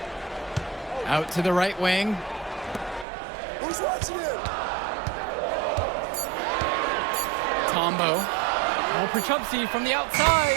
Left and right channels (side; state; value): left; drops out; at 3.1 s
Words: Out to the right wing. Who's watching it? Tombo. Oh, Prachumsi from the outside.